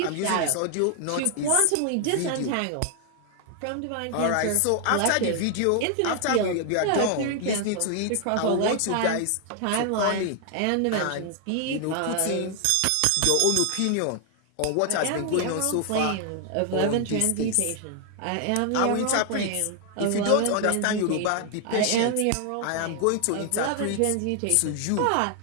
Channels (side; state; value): both; different; correlation 0.00